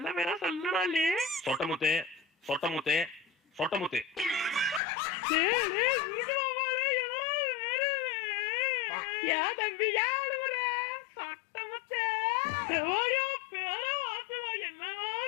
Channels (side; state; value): right; drops out; at 4.8 s